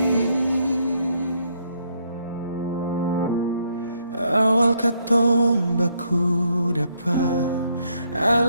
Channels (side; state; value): both; inverted; correlation -0.72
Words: Awal katong baku dapat,